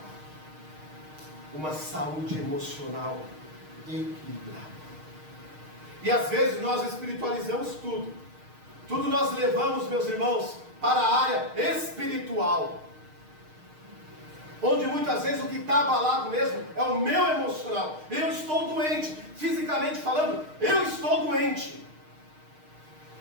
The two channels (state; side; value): late; left; 6.5 ms